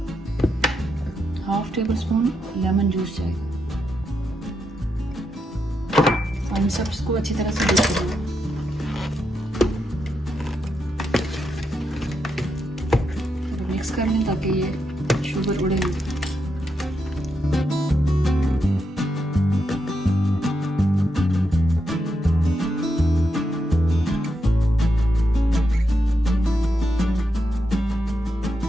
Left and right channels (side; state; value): both; normal; correlation 0.83